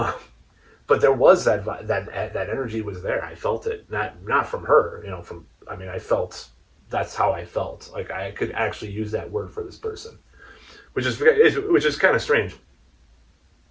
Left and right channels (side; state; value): both; identical; correlation 1.00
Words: but there was that energy was there. I felt it, not from her, from, I mean, I felt, that's how I felt. Like I could actually use that word for this person, which is kind of strange,